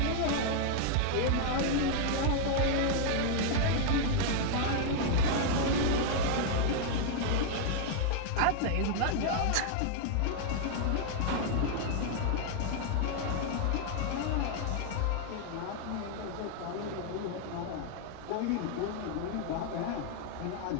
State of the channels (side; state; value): both; different; correlation 0.00